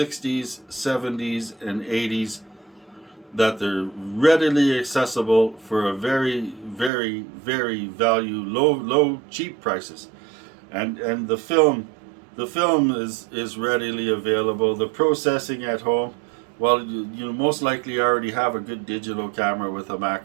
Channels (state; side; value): drops out; left; at 6.9 s